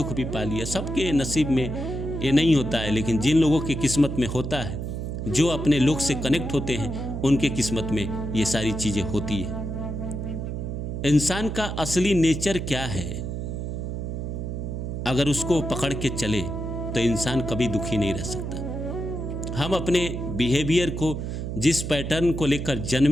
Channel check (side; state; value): right; noise; hum, 4 dB below the sound